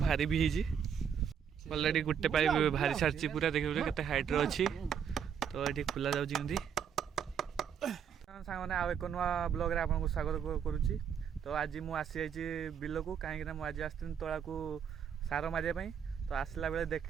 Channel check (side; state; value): left; quieter; 7.8 dB